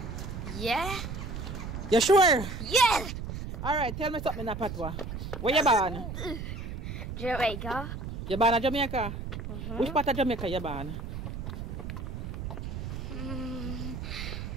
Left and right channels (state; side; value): noise; right; rumble, 6 dB below the sound